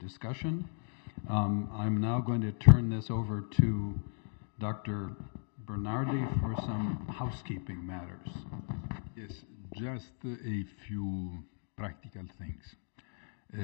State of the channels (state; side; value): silent; right; 54 dB below the other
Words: I'm now going to turn this over to Dr. Bernardi for some housekeeping matters. Yes, just a few practical things.